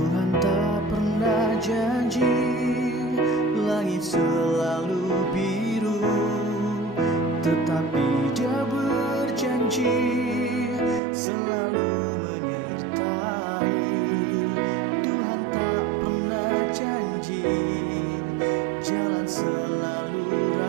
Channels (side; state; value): left; drops out; at 11.0 s